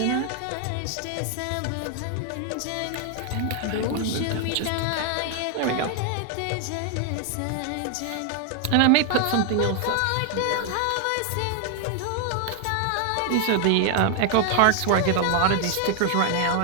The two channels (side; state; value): both; different; correlation 0.00